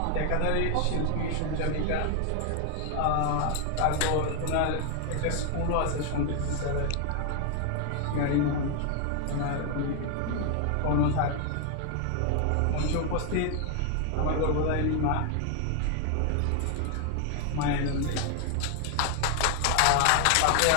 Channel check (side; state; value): both; different; correlation 0.00